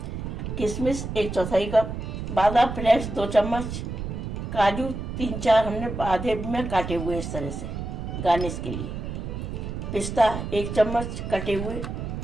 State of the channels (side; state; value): right; noise; rumble, 5 dB below the sound